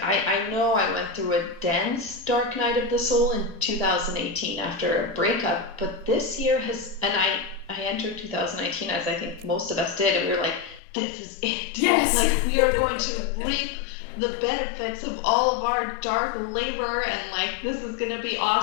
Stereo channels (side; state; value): right; drops out; at 10.8 s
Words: I know I went through a dense dark night of the soul in 2018 after a breakup, but this year has, and I entered 2019 as I think most of us did, and we were like, this is it. Yes. Like, we are going to reap the benefits of all of our dark labor and like this is gonna be